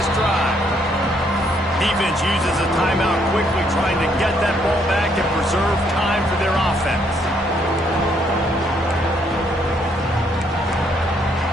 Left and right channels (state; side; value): normal; both; correlation 0.70